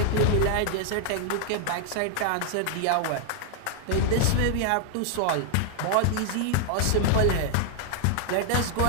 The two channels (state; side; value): different; both; correlation 0.00